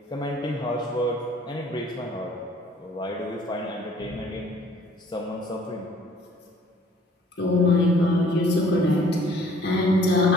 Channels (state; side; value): normal; both; correlation 0.56